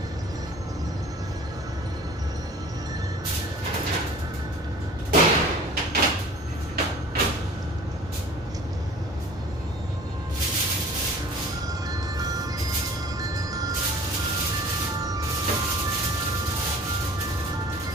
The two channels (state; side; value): normal; both; correlation 0.46